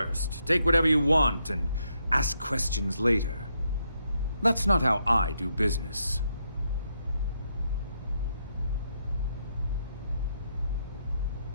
take whatever you want, and ask questions later. That's not how I do business.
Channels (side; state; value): both; inverted; correlation -0.79